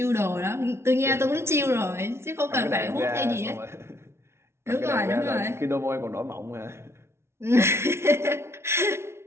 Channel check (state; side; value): late; left; 0.13 ms